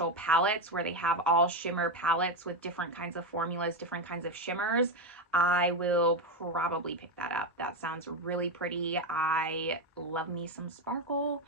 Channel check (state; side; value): normal; both; correlation 0.10